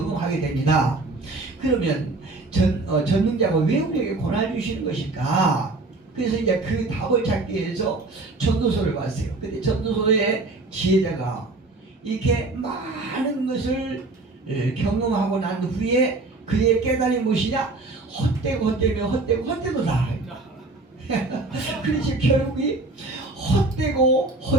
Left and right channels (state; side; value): quieter; left; 3.2 dB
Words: 됩니다. 그러면 전능자가 왜 우리에게 고난을 주시는 것일까? 그래서 이제 그 답을 찾기 위해서 전도서를 봤어요. 근데 전도서의 지혜자가 이렇게 많은 것을 경험하고 난 후에 그의 깨달음이 무엇이냐? 헛되도다. 그렇지 결국이 헛되다.